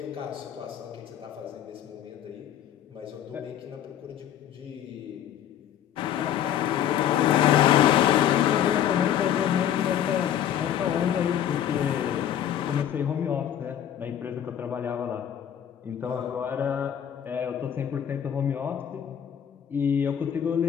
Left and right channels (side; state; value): right; quieter; 10.1 dB